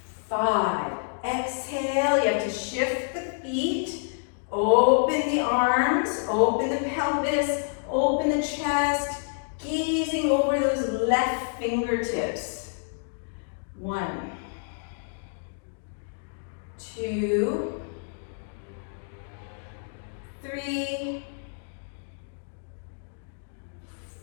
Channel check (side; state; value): right; silent; digital silence